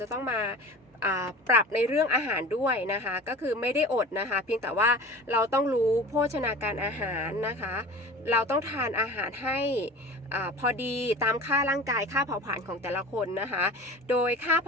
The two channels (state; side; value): normal; both; correlation 0.37